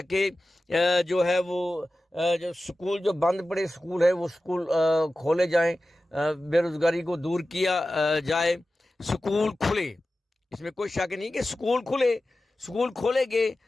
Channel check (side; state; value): both; normal; correlation 0.94